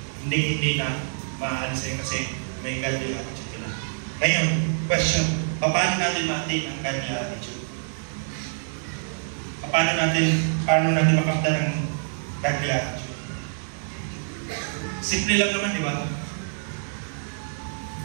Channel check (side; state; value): left; silent; digital silence